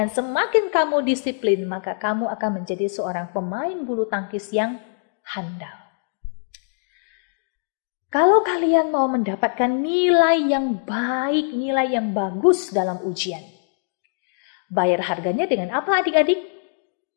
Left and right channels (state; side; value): silent; right; digital silence